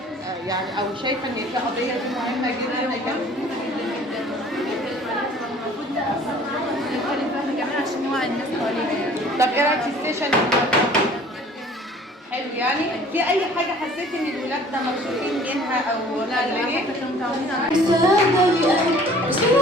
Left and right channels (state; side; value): normal; both; correlation 0.51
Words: يعني، او شايفه ان دي قضيه دي مهمه جدا عشان نوعي الناس حوالينا يعني. طب ايه رايك في السيشن النهارده؟ حلو يعني. في اي حاجه حسيت ان الولاد ده مبسوطين منها او قلقانين؟ كانوا متعودين على